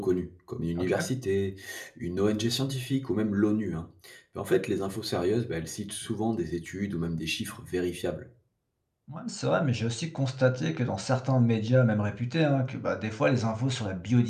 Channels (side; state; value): both; identical; correlation 1.00